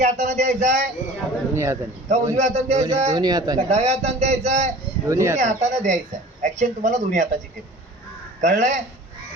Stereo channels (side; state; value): both; normal; correlation 0.44